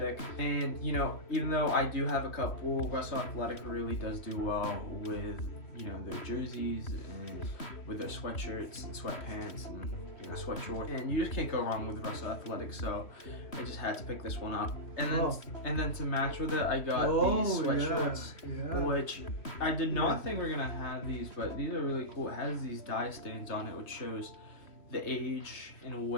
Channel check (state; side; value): late; right; 3.1 ms